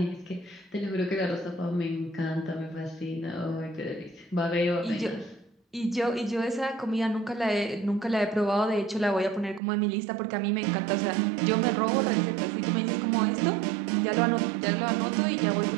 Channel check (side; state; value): left; drops out; at 9.6 s